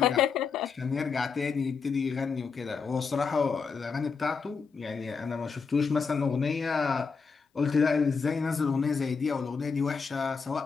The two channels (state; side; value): quieter; right; 5.3 dB